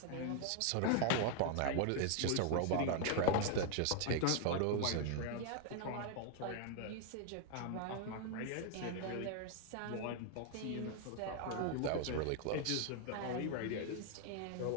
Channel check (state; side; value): different; both; correlation 0.00